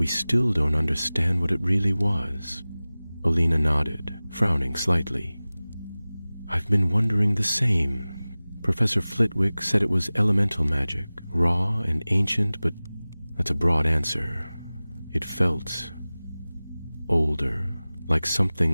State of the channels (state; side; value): inverted; both; correlation -0.98